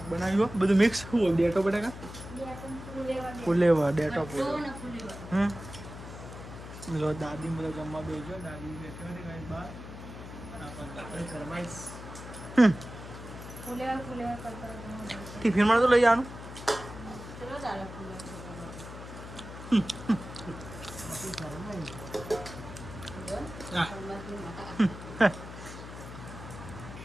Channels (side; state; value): left; noise; hum, 12 dB below the sound